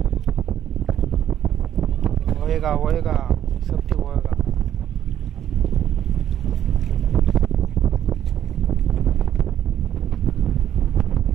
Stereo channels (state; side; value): quieter; left; 10.7 dB